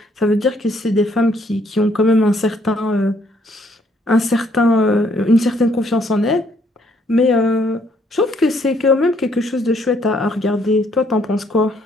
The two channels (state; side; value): normal; both; correlation 0.68